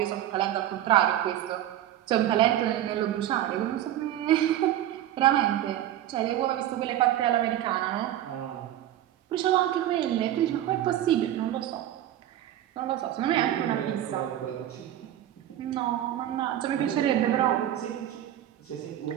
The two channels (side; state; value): left; quieter; 12.4 dB